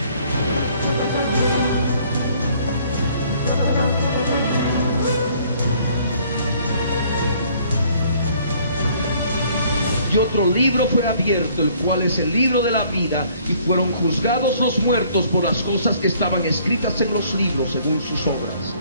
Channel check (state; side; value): inverted; both; correlation -0.60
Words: Y otro libro fue abierto, el cual es el libro de la vida, y fueron juzgados los muertos por las cosas que estaban escritas en los libros según sus obras.